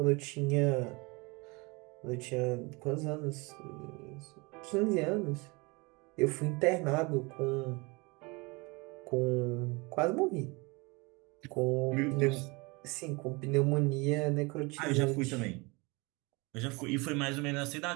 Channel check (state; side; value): quieter; left; 26.8 dB